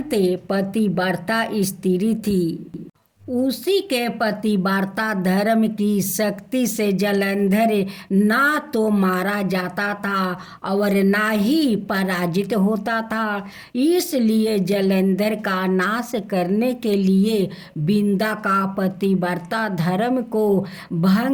पतिव्रता स्त्री थी। उसी के पतिव्रता धर्म की शक्ति से जलंधर ना तो मारा जाता था और ना ही पराजित होता था। इसलिए जलंधर का नाश करने के लिए बिंदा का पतिव्रता धर्म को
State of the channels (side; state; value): both; identical; correlation 1.00